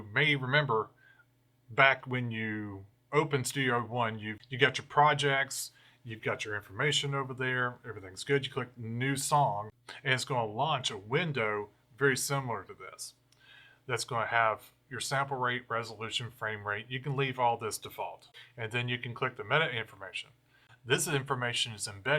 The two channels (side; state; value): both; identical; correlation 1.00